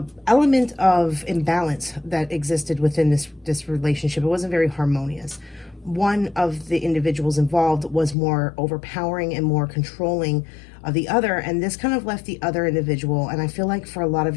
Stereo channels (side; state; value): right; drops out; at 8.2 s